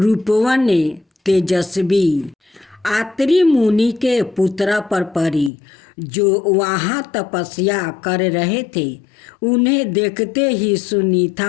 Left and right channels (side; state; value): right; drops out; at 5.5 s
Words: तेजस्वी आत्री मुनि के पुत्र पर पड़ी, जो वहां तपस्या कर रहे थे। उन्हें देखते ही